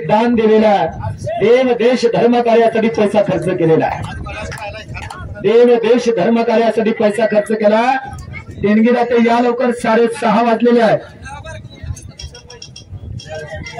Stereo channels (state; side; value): identical; both; correlation 1.00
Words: दिलेलं आहे देव देश धर्म कार्यासाठी पैसा खर्च केलेला आहे देव देश धर्म कार्यासाठी पैसा खर्च केला देणगीदाते या लवकर 6:30 वाजलेले आहेत